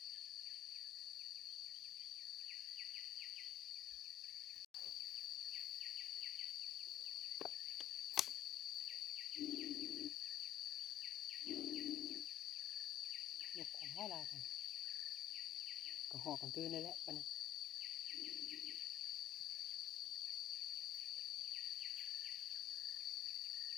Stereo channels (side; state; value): right; quieter; 12.2 dB